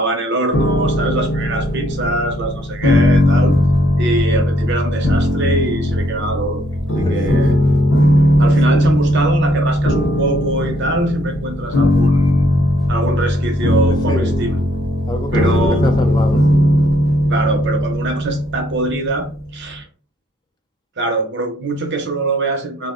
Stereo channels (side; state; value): both; normal; correlation 0.68